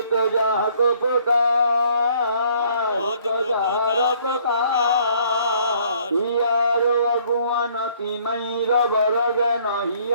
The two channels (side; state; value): both; inverted; correlation -0.61